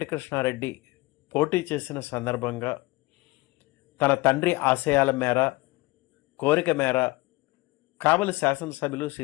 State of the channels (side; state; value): right; quieter; 22.0 dB